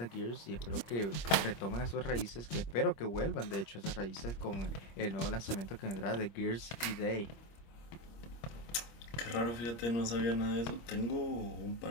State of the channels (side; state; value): right; late; 25 ms